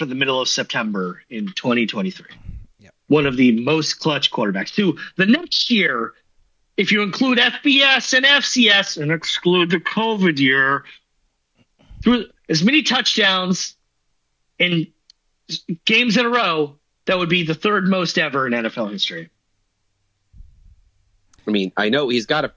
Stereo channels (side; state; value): both; identical; correlation 1.00